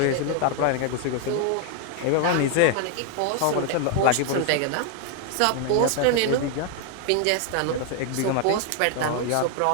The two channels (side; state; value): both; different; correlation 0.00